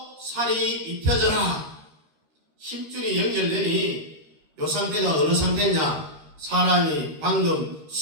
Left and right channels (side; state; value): left; late; 13 ms